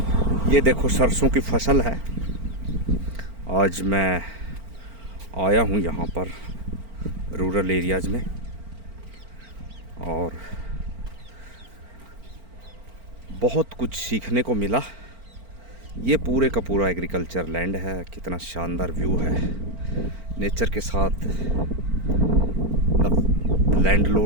ये देखो सरसों की फसल है। आज मैं आया हूँ यहाँ पर रूरल एरियाज़ में और बहुत कुछ सीखने को मिला। ये पूरे का पूरा एग्रीकल्चर लैंड है। कितना शानदार व्यू है। नेचर के साथ the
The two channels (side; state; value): left; late; 4.4 ms